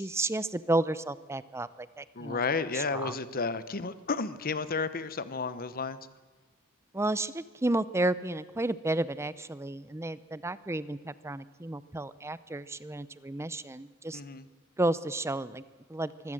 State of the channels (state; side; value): normal; both; correlation 0.52